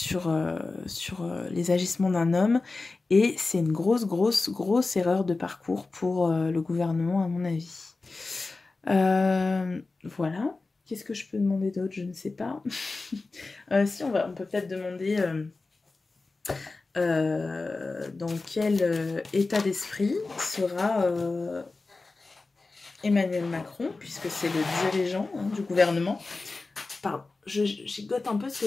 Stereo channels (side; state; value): right; quieter; 3.6 dB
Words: les agissements d'un homme, et c'est une grosse erreur de parcours pour le gouvernement, à mon avis. Voilà. Qu'est-ce que je peux demander d'autre? Je ne sais pas. Si, on peut peut-être demander dans quel état d'esprit sera Emmanuel Macron, puisque c'est le dirigeant du gouvernement. Pardon, je gigote un peu parce